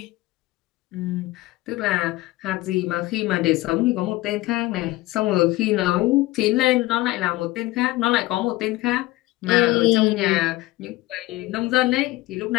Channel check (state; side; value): quieter; right; 18.7 dB